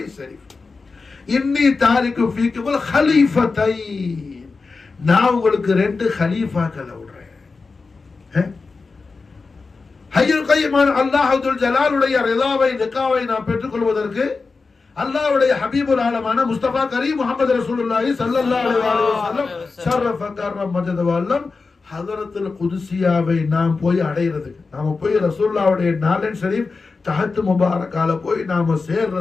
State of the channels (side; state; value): right; quieter; 4.3 dB